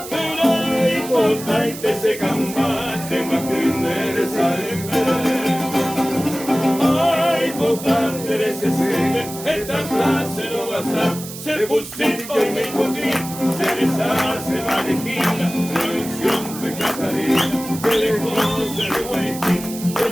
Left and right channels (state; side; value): noise; right; hiss, 12 dB below the sound